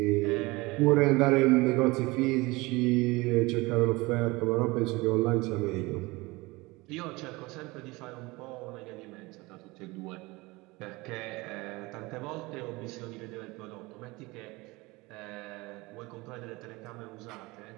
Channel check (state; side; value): quieter; left; 22.9 dB